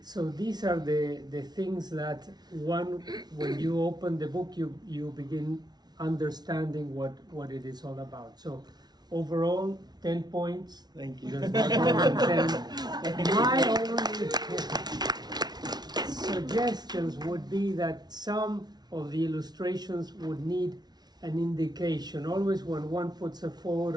So these are the things that when you open the book, you begin understanding what it is all about. So overall, 10 points. Thank you. There's not more than 10. My only suggestions would be that some of the illustrations would need an indication. Always when one puts a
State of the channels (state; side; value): late; left; 0.19 ms